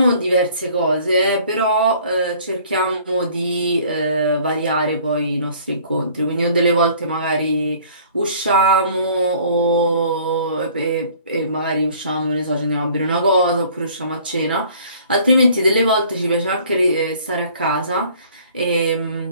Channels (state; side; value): inverted; both; correlation -0.54